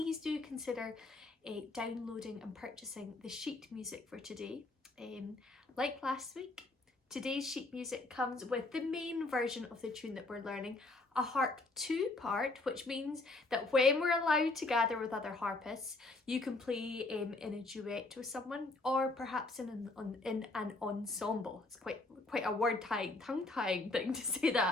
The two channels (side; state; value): right; quieter; 3.1 dB